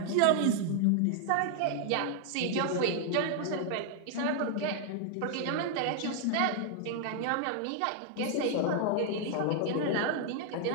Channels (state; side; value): different; both; correlation 0.00